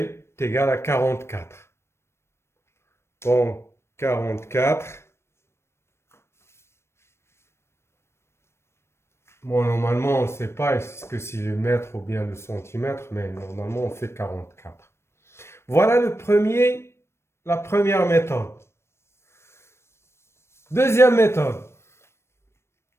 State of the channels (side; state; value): right; late; 0.13 ms